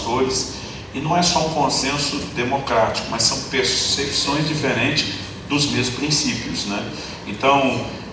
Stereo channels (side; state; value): both; identical; correlation 1.00